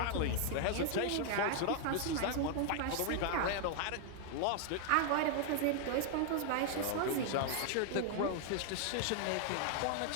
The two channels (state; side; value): different; both; correlation 0.00